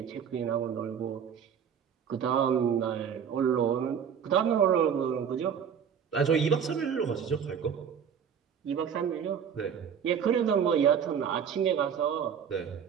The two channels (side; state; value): left; quieter; 7.7 dB